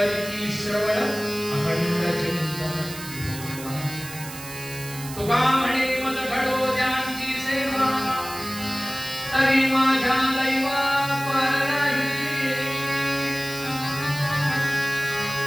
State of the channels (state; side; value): noise; right; hiss, 12 dB below the sound